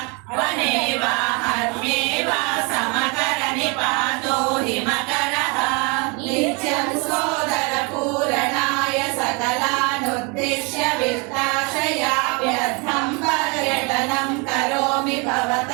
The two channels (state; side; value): quieter; left; 30.9 dB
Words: वने वा हर्म्ये वा समकरनि पातो हिमकरः नित्यं सोदरपूरणाय सकलानुद्दिश्य वित्ताशया व्यर्थं पर्यटनं करोमि